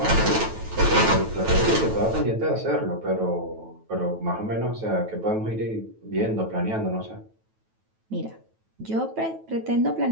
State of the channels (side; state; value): left; late; 9.2 ms